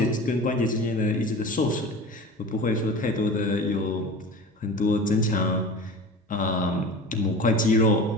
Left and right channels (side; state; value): both; normal; correlation 0.35